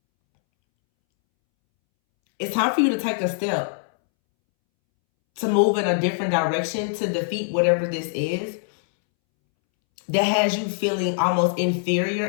It's time for you to take a step to move in a different direction, to defeat whatever this is that has you feeling almost inferior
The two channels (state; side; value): silent; right; 64 dB below the other